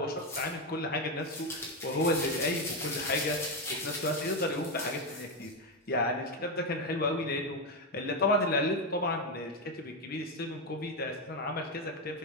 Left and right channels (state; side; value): normal; both; correlation 0.09